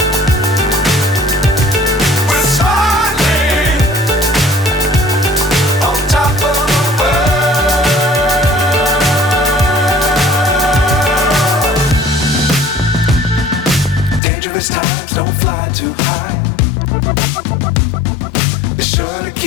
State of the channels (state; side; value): drops out; right; at 14.2 s